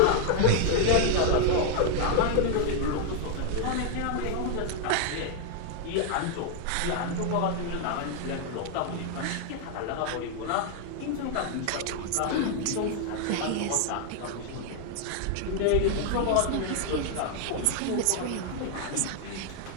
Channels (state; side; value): different; both; correlation 0.00